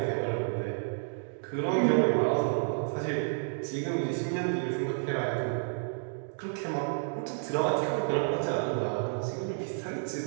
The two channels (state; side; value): silent; left; digital silence